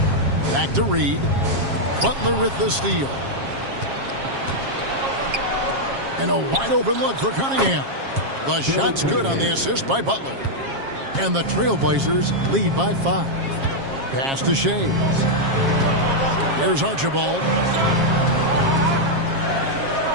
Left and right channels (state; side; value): late; left; 7.4 ms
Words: Back to Reed. Butler with the steal. And a wide open look for Cunningham. The shot's good on the assist by Butler. And the Trailblazers lead by 5. Pass to Shades. Here's Archibald.